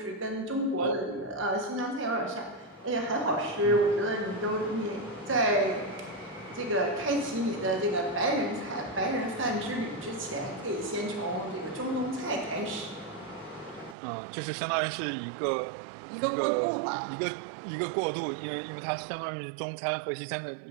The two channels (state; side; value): drops out; left; at 14.0 s